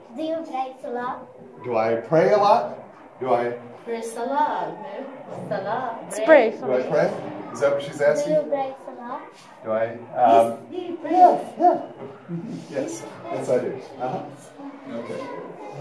Do you pray salah? Do I pray a lot? Do I? Pray salah. Salah. Pray. Do I pray? Is that what she's asking? Do you pray salah? Do I? Do you pray? Yeah. Yes, I do. Okay.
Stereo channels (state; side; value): identical; both; correlation 1.00